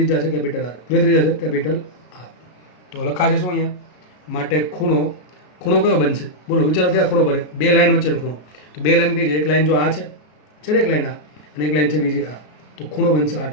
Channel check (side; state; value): right; late; 33 ms